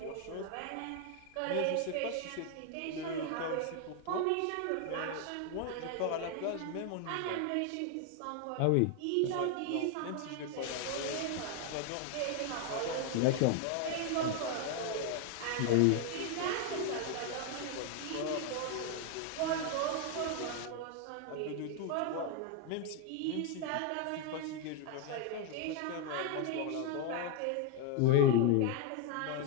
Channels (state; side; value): different; both; correlation 0.01